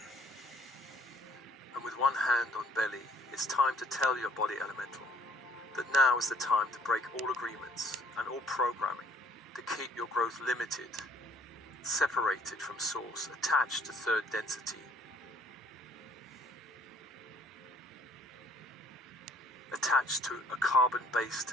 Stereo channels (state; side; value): normal; both; correlation 0.59